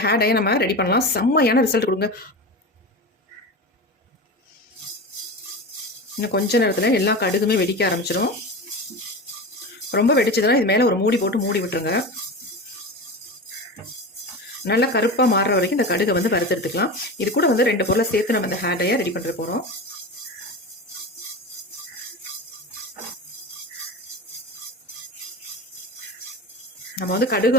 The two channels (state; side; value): normal; both; correlation 0.26